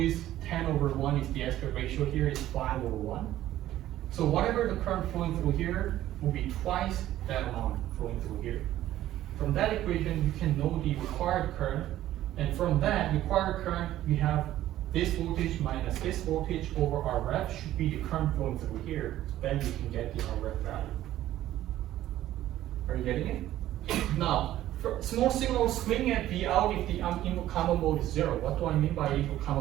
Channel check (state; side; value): quieter; left; 13.6 dB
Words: 10/1 is the aspect ratio here, is 5/1. So whatever the current flowing through here will be twice that amount flowing through here. From that equation, you can know the required current, and from that required current, we have this voltage minus this voltage over RF should be the current flowing through here. Then you can get the RF value. Are you getting it? Now, for small signal swing at V out if the input common mode is 0. What do I mean by input